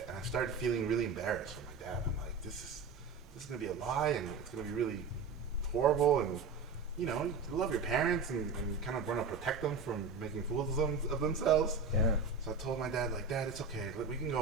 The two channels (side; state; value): left; quieter; 4.8 dB